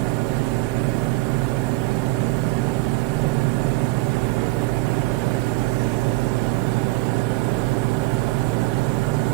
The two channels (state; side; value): quieter; left; 21.9 dB